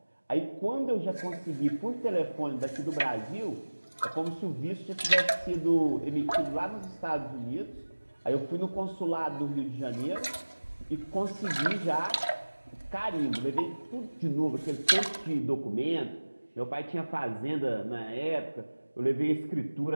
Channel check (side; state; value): both; inverted; correlation -1.00